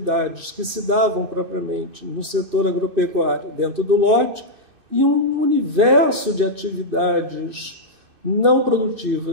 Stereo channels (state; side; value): late; left; 2.6 ms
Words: que se davam propriamente no setor agropecuário dentro do lote e um universo de atividades não